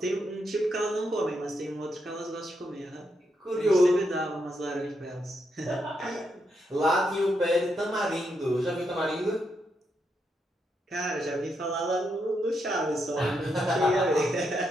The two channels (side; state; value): both; normal; correlation 0.81